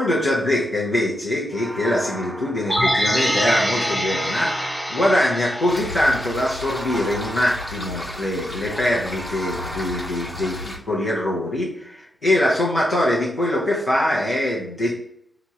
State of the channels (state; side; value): normal; both; correlation 0.84